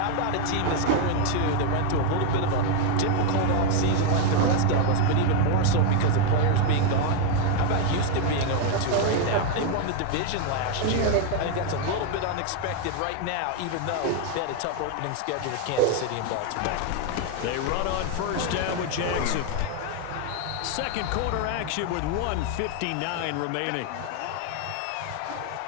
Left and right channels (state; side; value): different; both; correlation 0.01